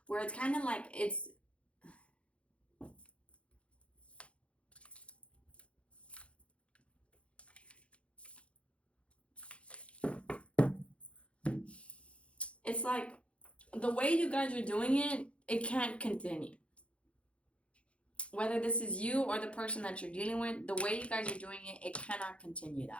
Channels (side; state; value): right; late; 0.061 ms